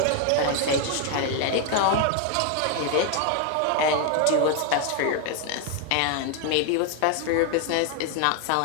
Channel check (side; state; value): both; different; correlation 0.01